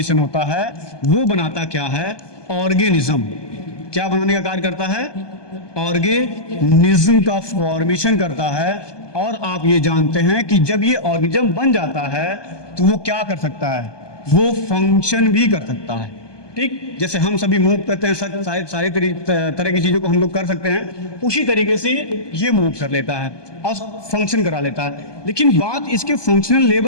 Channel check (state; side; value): late; right; 1.2 ms